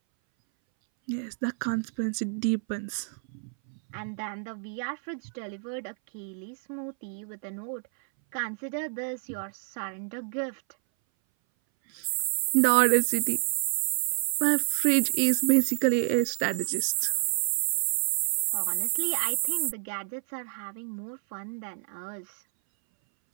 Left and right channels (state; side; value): silent; left; 59 dB below the other